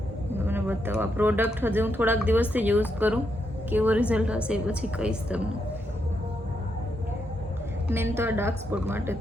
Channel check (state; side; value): normal; both; correlation 0.81